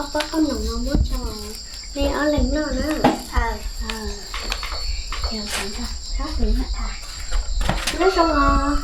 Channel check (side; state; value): both; identical; correlation 1.00